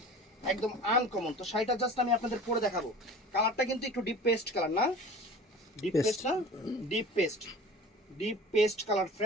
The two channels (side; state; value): both; normal; correlation 0.40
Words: একদম আনকমন। তো শাড়িটা জাস্ট আমি আপনাদের পরে দেখাবো। কালারটা কিন্তু একটু ডিপ পেস্ট কালার, না ডিপ পেস্ট, না ডিপ পেস্ট কালার